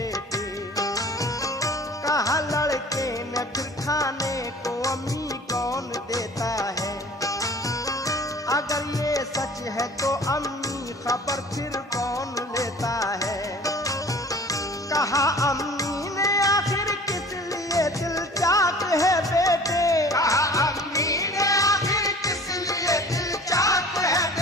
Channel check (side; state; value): both; normal; correlation 0.45